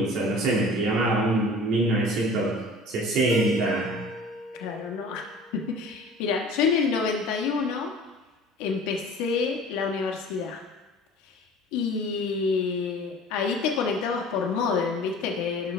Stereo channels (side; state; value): both; normal; correlation 0.44